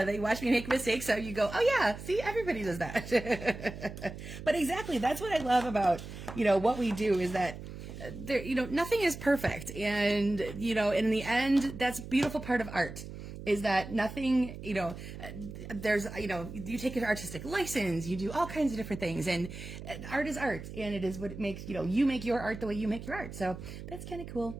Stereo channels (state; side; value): noise; right; hum, 11 dB below the sound